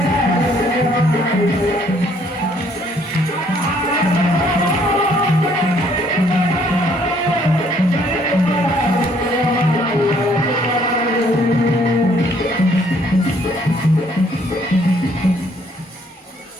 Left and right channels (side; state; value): both; normal; correlation 0.64